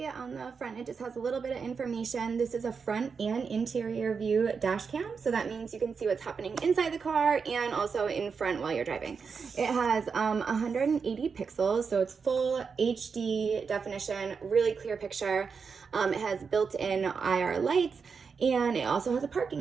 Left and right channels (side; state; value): left; quieter; 5.6 dB